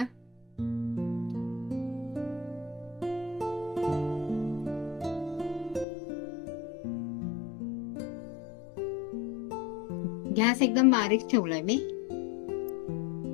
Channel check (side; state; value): right; drops out; at 5.9 s